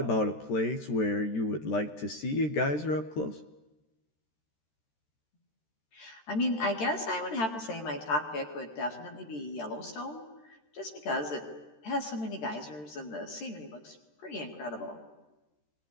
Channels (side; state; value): right; late; 13 ms